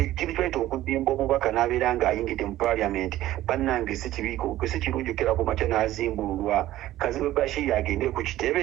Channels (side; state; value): left; quieter; 14.6 dB